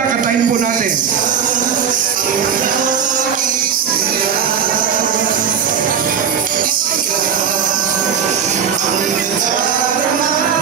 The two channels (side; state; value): left; quieter; 7.5 dB